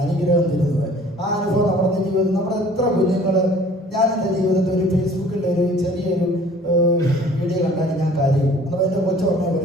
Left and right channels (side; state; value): both; normal; correlation 0.52